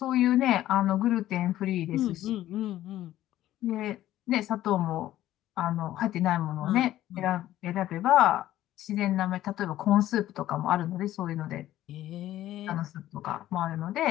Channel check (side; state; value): right; quieter; 13.8 dB